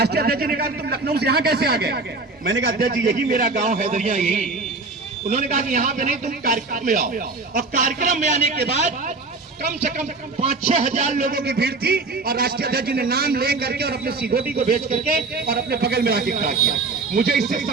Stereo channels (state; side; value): quieter; left; 3.7 dB